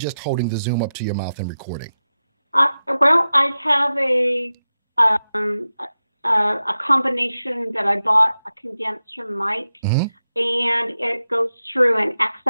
holding the Zoom up to your mouth and recording? Well, I have a combination that I bought, a condenser mic, and it goes through an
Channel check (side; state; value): both; inverted; correlation -0.92